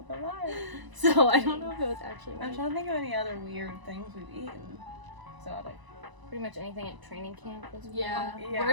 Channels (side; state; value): left; late; 1.0 ms